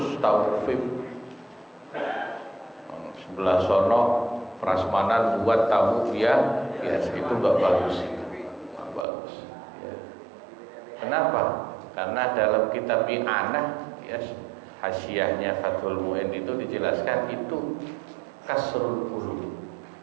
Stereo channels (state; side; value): drops out; left; at 9.1 s